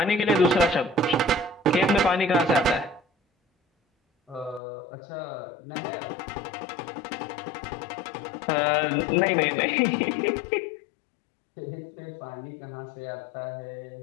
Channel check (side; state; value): right; drops out; at 4.6 s